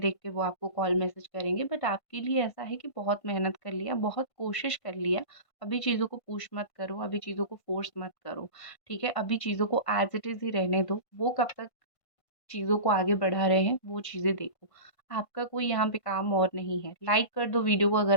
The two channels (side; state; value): right; late; 1.5 ms